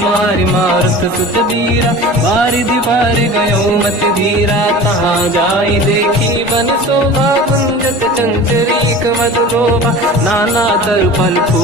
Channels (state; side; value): normal; both; correlation 0.37